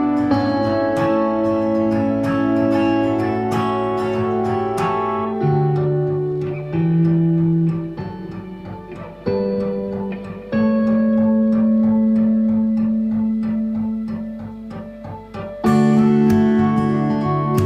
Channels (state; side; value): identical; both; correlation 1.00